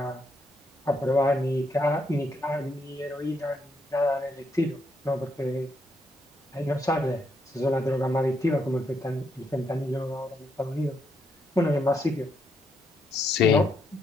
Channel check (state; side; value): normal; both; correlation 0.77